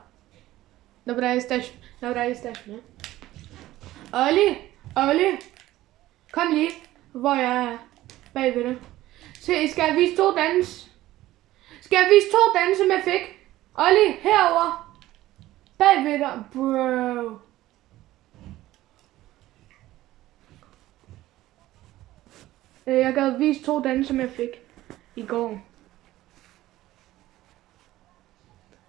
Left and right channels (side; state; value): left; quieter; 15.7 dB